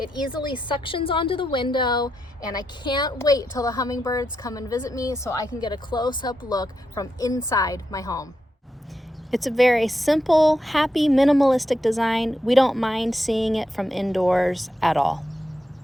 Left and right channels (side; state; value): both; normal; correlation 0.84